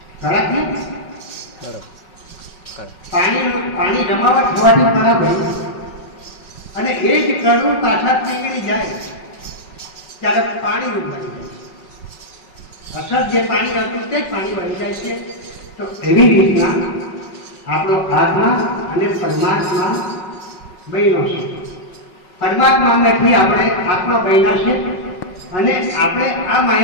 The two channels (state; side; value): late; right; 5.4 ms